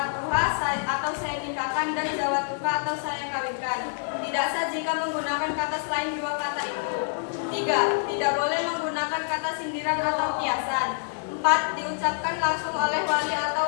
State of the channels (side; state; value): right; silent; digital silence